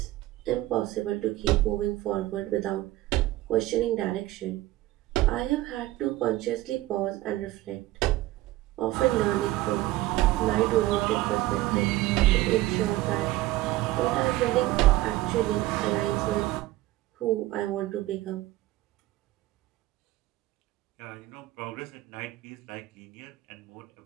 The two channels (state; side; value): quieter; left; 16.8 dB